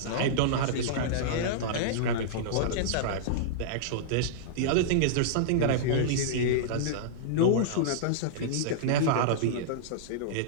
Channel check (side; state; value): both; different; correlation -0.03